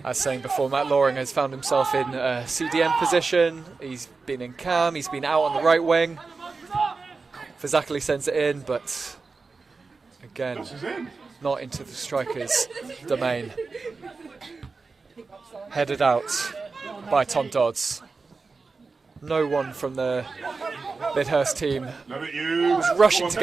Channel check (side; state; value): left; quieter; 4.3 dB